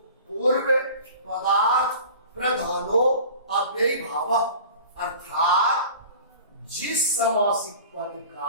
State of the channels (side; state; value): both; inverted; correlation -0.41